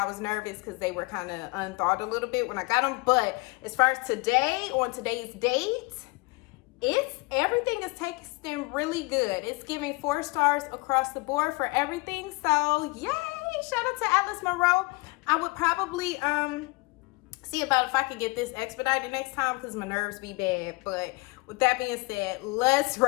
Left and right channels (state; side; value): quieter; right; 25.9 dB